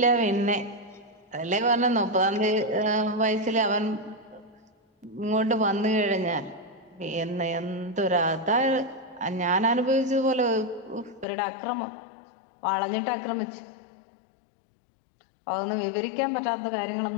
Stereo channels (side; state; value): right; drops out; at 11.2 s